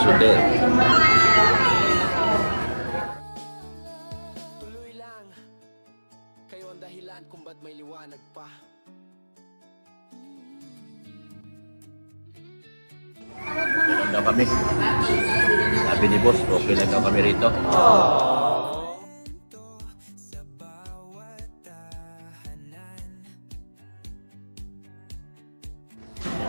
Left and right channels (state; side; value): inverted; both; correlation -1.00